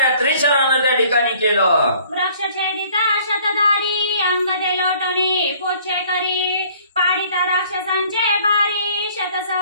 त्रिशरानं त्या ठिकाणी केलं. वृक्ष छेदिता शतधारी अंगदे लोटणी पोछे करी पाडिता राक्षसांचे भारी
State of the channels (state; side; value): inverted; both; correlation -0.56